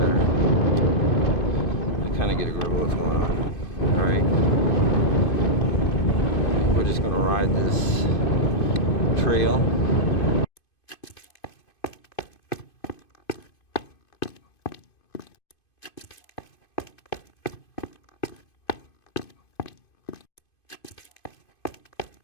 I kind of get a grip of what's going on. All right. We're just going to ride this trail.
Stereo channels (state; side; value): late; right; 2.5 ms